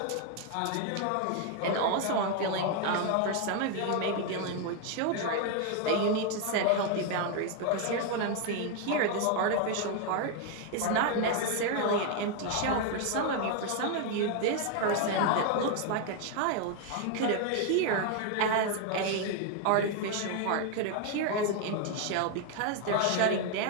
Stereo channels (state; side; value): different; both; correlation 0.01